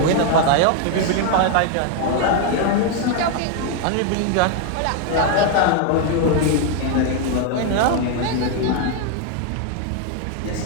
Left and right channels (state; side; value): different; both; correlation 0.01